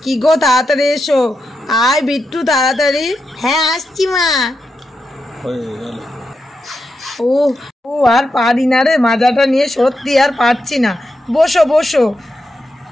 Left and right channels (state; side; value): normal; both; correlation 0.86